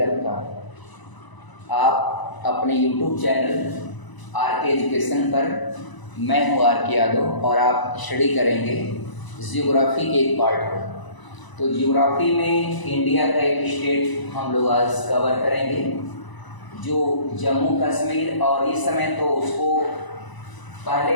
आपका आप अपने यूट्यूब चैनल आर के एजुकेशन पर, मैं हूँ आर के यादव और आप स्टडी करेंगे जियोग्राफी के एक पार्ट को। तो जियोग्राफी में इंडिया का एक स्टेट हम लोग आज कवर करेंगे जो जम्मू कश्मीर, और इस समय तो उसको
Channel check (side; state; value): right; late; 1.0 ms